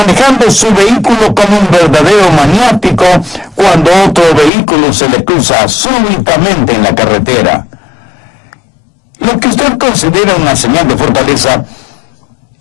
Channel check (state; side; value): drops out; right; at 4.5 s